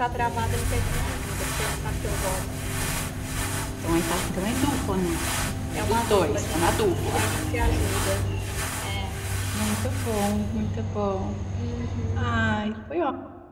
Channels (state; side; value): identical; both; correlation 1.00